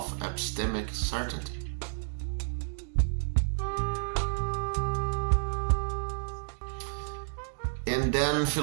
epistemic certainty. And then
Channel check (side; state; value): left; silent; digital silence